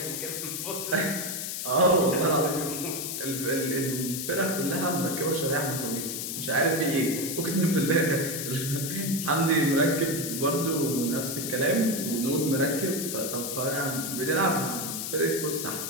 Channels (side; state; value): left; noise; hiss, 4 dB below the sound